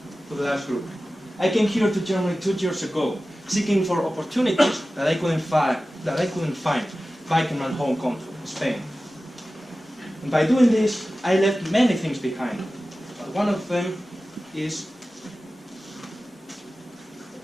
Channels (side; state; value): both; normal; correlation 0.95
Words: to the last group. I came here to Germany 2 years ago, seeking for opportunities that I couldn't find back in my home country, Spain. And by doing this, I left many things behind. But one of them is